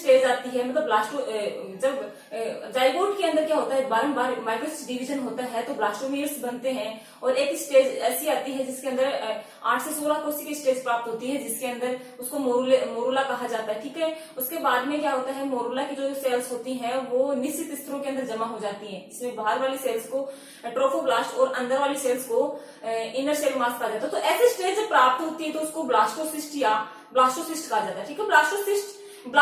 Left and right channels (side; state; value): both; identical; correlation 1.00